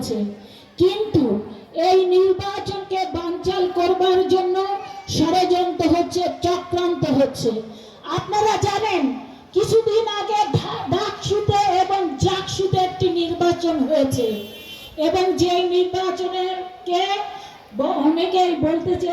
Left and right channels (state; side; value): identical; both; correlation 1.00